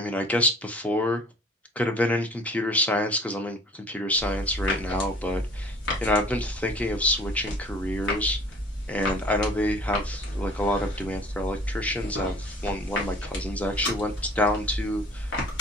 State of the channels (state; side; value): normal; both; correlation 0.49